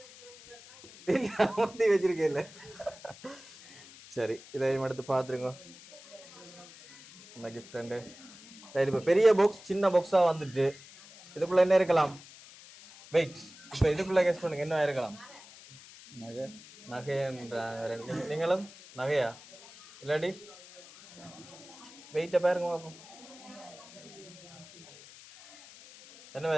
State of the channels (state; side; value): noise; left; hiss, 19 dB below the sound